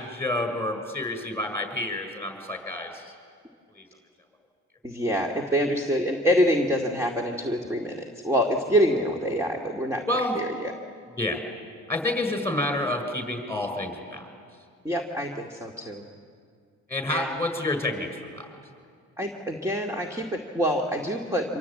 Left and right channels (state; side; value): normal; both; correlation 0.48